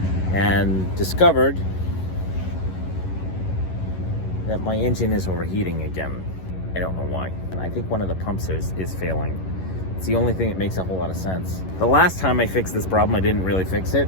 and discovered that my engine is overheating again. I don't know why. And I think one of the pumps is failing. It's the only thing that makes a whole lot of sense. The last time I fixed this problem, I didn't really fix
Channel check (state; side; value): late; right; 11 ms